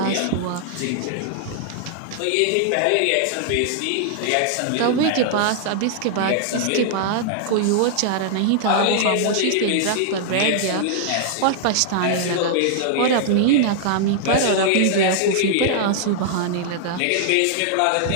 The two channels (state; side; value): different; both; correlation -0.01